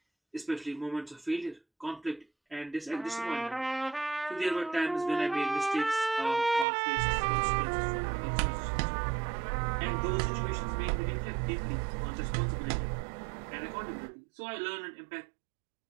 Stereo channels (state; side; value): drops out; left; at 6.7 s